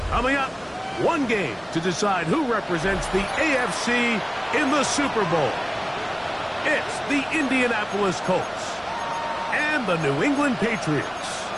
Coming up, one game to decide who represents the AFC in the Super Bowl. It's the Indianapolis Colts and the New England Patriots.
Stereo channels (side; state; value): both; identical; correlation 1.00